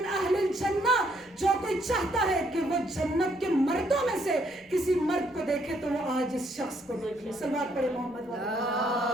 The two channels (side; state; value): both; normal; correlation 0.70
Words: اہل الجنہ، جو کوئی چاہتا ہے کہ وہ جنت کے مردوں میں سے کسی مرد کو دیکھے تو وہ آج اس شخص کو دیکھ لے. صلوات پڑھے محمد